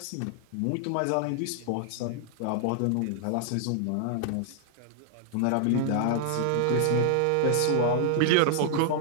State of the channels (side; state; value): both; different; correlation -0.01